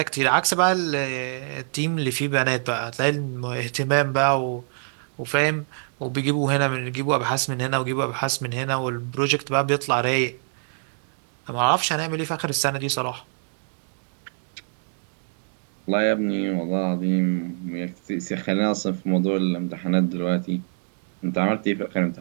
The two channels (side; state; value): left; silent; digital silence